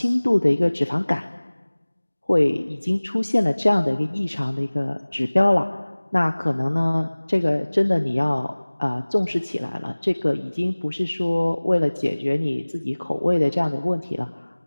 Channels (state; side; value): inverted; both; correlation -1.00